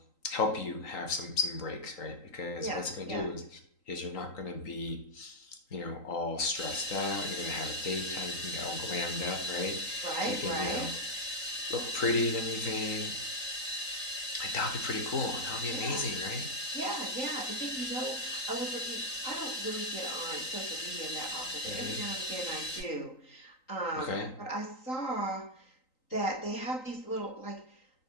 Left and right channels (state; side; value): late; right; 3.9 ms